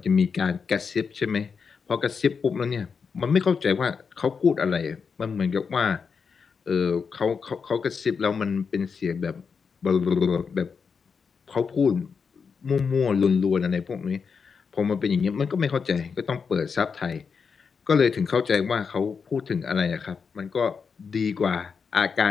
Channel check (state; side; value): quieter; right; 5.7 dB